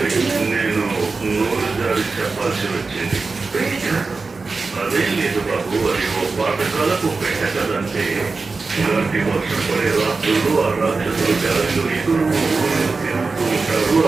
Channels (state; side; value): quieter; left; 4.1 dB